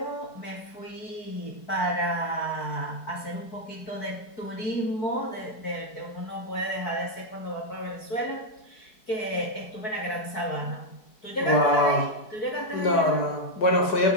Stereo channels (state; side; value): late; right; 4.7 ms